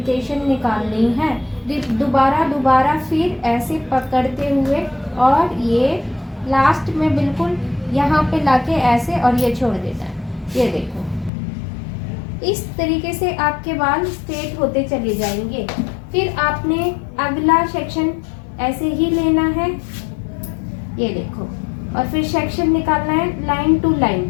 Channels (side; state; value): right; drops out; at 11.3 s